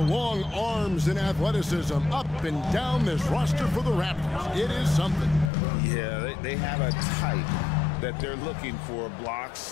arms and athleticism up and down this roster for the Raptors. It is something. Yeah, they have a type that they're looking for. Blocks,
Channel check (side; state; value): right; drops out; at 5.5 s